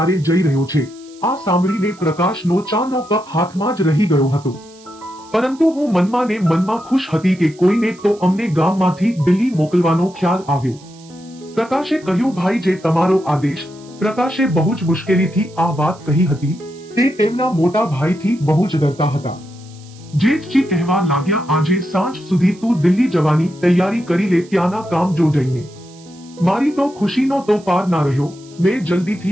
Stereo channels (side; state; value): right; noise; hiss, 25 dB below the sound